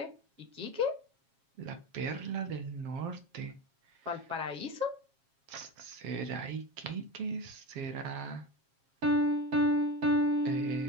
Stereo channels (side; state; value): left; late; 7.4 ms